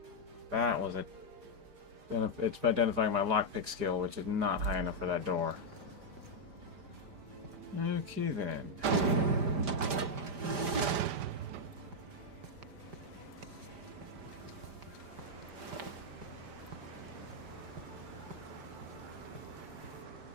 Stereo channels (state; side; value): late; left; 5.0 ms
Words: That was it. It's identifying my lockpick skill, which is not high enough for that door. Okay then.